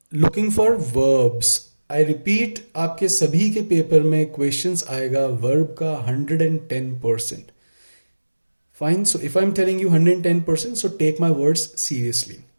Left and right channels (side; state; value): both; inverted; correlation -1.00